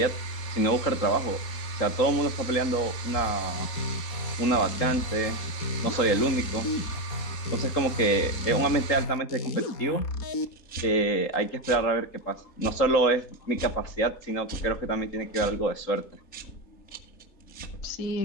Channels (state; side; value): late; right; 3.8 ms